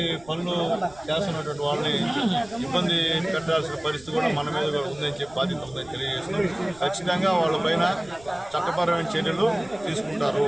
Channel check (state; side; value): noise; right; rumble, 23 dB below the sound